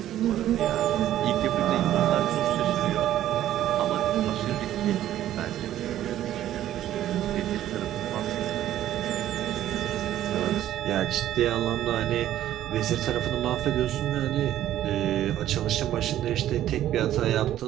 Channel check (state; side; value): quieter; left; 12.5 dB